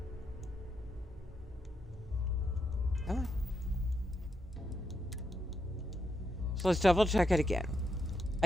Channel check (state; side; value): normal; both; correlation 0.82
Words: Come on. So let's double check it again.